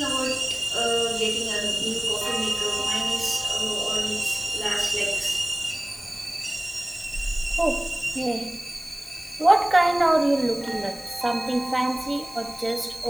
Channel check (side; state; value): left; noise; hiss, 19 dB below the sound